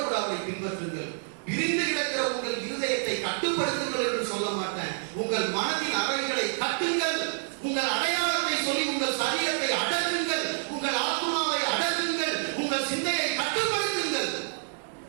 கூட அவரை பின்பற்றுங்கள். பிரிந்து கிடக்கிற உங்கள் இருதயத்தை கட்டுப்படுத்துங்கள் என்று சொல்ல மாட்டேன். உங்கள் மனதின் அறைகளை கட்டுங்கள். உங்கள் அடையாளத்தை சொல்லி உங்கள் சரீரத்தை அடக்குங்கள். உங்கள் ஆத்மாவை அடக்குங்கள். உங்கள் சிந்தையை கட்டுப்படுத்துங்கள்.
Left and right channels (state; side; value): silent; left; digital silence